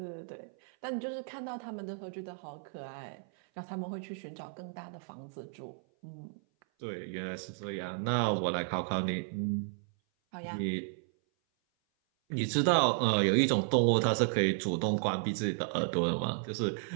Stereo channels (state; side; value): silent; left; 56 dB below the other